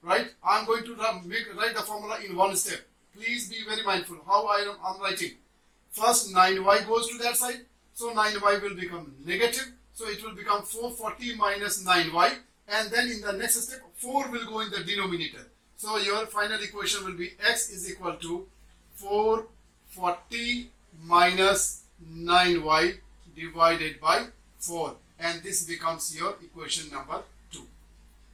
right? I am going to write the formula in one step. Please be very mindful how I am writing. First 9Y goes to that side. So 9Y will become negative. So it will become 440 minus 9Y. And then in the next step, 4 will go in the denominator. So your final equation will be X is equal to 440 minus 9Y divided by 4. And this becomes your equation number 2.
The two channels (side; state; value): both; identical; correlation 1.00